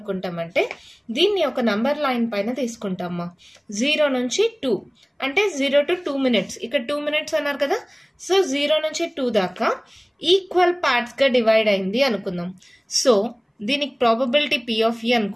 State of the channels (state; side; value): identical; both; correlation 1.00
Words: దీన్ని ఒక నంబర్ లైన్ పైన తీసుకుంటామా. 0 నుంచి 2 అంటే 0 to 2 minutes, ఇక్కడ 2 minutes అన్నారు కదా, సో 0 నుంచి 2 దాకా ఈక్వల్ పార్ట్స్గా డివైడ్ అయింది అనుకుందాం. సో దీనికి ప్రాబబిలిటీ P of E